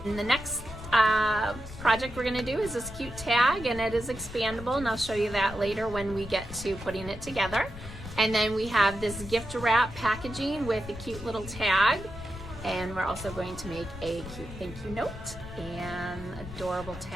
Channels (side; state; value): left; noise; rumble, 13 dB below the sound